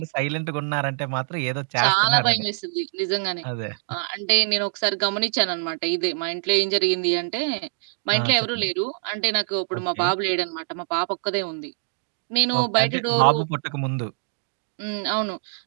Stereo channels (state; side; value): silent; left; digital silence